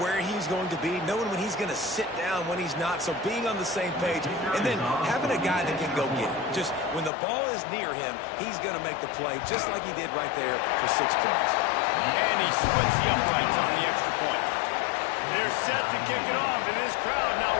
he's going to be, knowing when he's going to sit down, when he's not, so being on the same page, and then having a guy that can go get it. Just when the ball is near him, he's going to make the play, just like he did right there for 6 points. And he splits the uprights on the extra point. They're set to kick it off, and this crowd now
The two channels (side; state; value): right; drops out; at 7.1 s